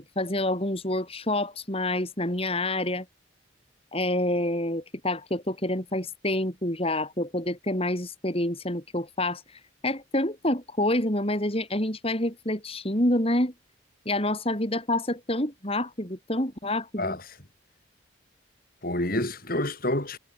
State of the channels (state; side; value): normal; both; correlation 0.45